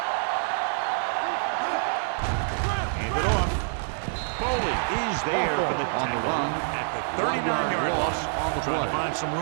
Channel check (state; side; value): silent; left; digital silence